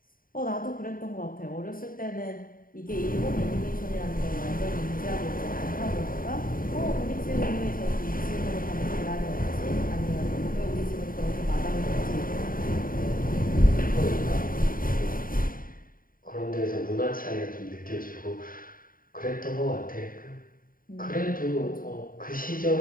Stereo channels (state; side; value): late; right; 0.41 ms